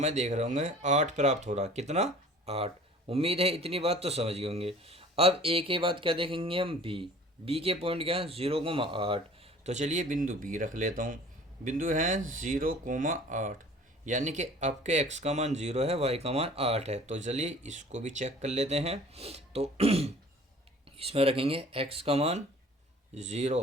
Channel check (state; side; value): normal; both; correlation 0.48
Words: देख रहे होंगे 8 प्राप्त हो रहा, कितना 8। उम्मीद है इतनी बात तो समझ गए होंगे। अब ए के बाद क्या देखेंगे हम, बी। बी के पॉइंट क्या है 0,8। तो चलिए बिंदु बी रख लेता हूँ। बिंदु है 0,8, यानी कि आपके एक्स का मान 0 है, वाई का मान 8 है। तो चलिए इसको भी चेक कर लेते हैं। तो इसमें रखेंगे एक्स का मान